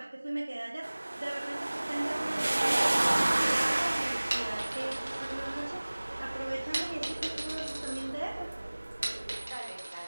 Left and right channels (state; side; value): inverted; both; correlation -1.00